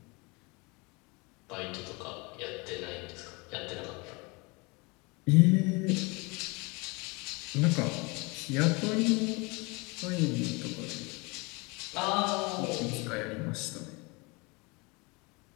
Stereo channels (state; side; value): quieter; right; 27.5 dB